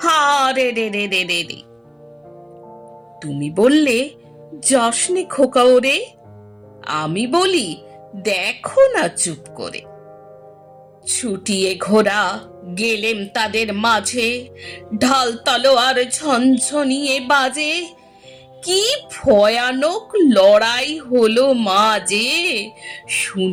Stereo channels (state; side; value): identical; both; correlation 1.00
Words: হারে রে রে রে রে রে। তুমি বললে যাসনে খোকা ওরে, আমি বলি দেখো না চুপ করে। ছুটিয়ে ঘোড়া গেলেম তাদের মাঝে, ঢাল তলোয়ার ঝনঝনিয়ে বাজে। কি ভয়ানক লড়াই হলো মাঝে,